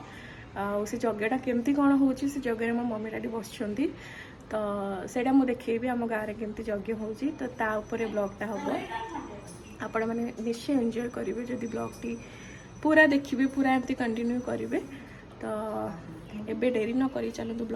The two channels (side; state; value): both; identical; correlation 1.00